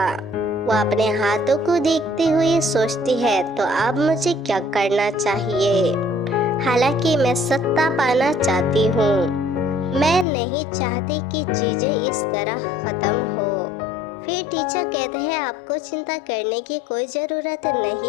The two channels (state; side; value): drops out; right; at 10.2 s